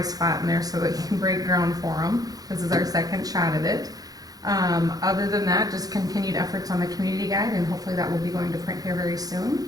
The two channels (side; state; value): left; late; 0.18 ms